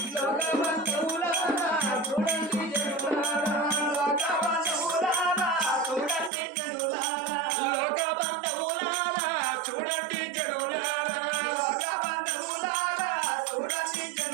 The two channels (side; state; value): left; drops out; at 6.3 s